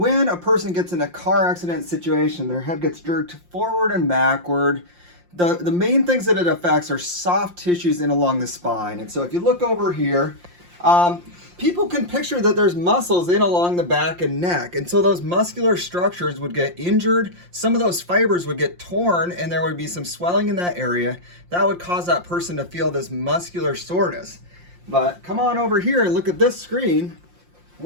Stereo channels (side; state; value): left; late; 5.7 ms